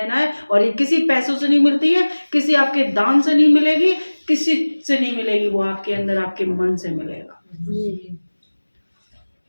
है, और ये किसी पैसों से नहीं मिलती है, किसी आपके दान से नहीं मिलेगी, किसी से नहीं मिलेगी, वो आपके अंदर आपके मन से मिलेगा।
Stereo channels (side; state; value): both; inverted; correlation -1.00